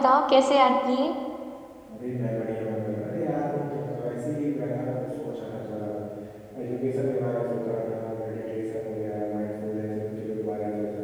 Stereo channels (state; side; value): identical; both; correlation 1.00